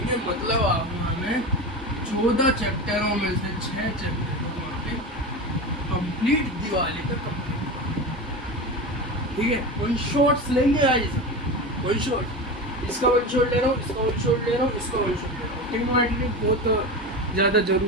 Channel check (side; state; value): both; normal; correlation 0.25